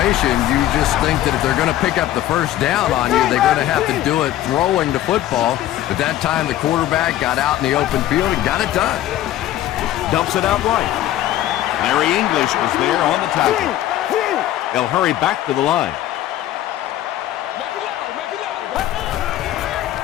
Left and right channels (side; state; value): right; quieter; 13.4 dB